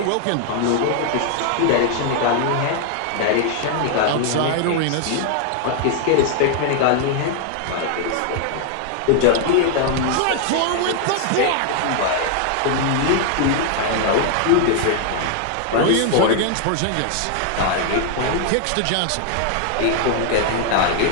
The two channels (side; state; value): both; different; correlation 0.00